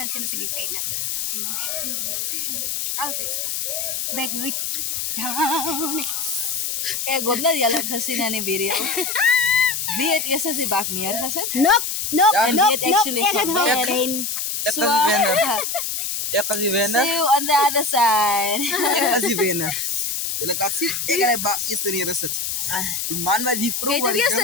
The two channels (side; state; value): left; noise; hiss, 2 dB below the sound